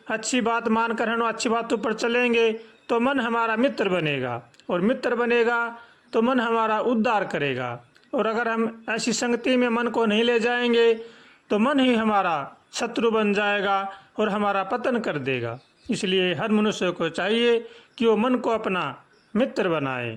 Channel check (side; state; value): both; identical; correlation 1.00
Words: अच्छी बात मानकर हम अच्छी बातों पर चलेंगे, तो मन हमारा मित्र बनेगा, और मित्र बनेगा तो मन हमारा उद्धार करेगा। और अगर हम ऐसी संगति में मन को नहीं ले जाएंगे, तो मन ही हमारा शत्रु बन जाएगा और हमारा पतन कर देगा। इसलिए हर मनुष्य को चाहिए कि वो मन को अपना मित्र बनाए।